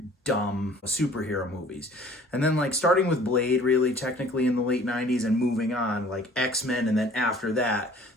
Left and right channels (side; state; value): both; normal; correlation 0.52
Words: dumb superhero movies. And then like starting with Blade really technically in the late 90s and moving on like X-Men, and then after that